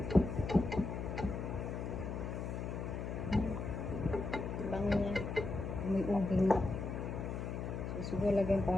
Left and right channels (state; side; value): noise; left; hum, 4 dB below the sound